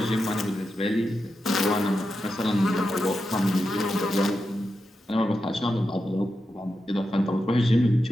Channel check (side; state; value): both; normal; correlation 0.88